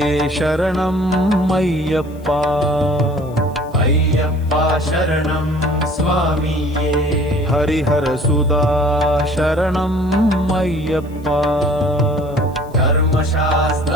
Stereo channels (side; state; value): left; noise; hiss, 29 dB below the sound